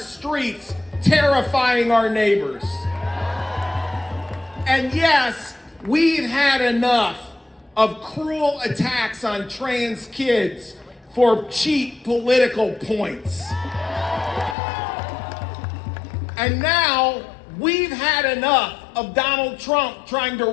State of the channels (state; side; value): drops out; right; at 14.6 s